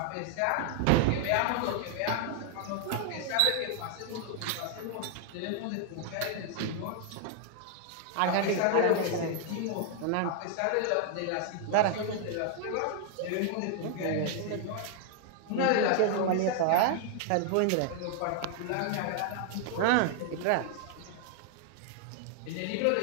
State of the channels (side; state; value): both; different; correlation 0.00